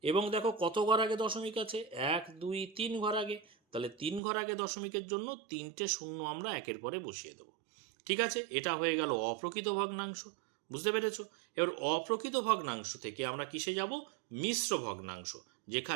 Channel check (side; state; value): left; drops out; at 4.2 s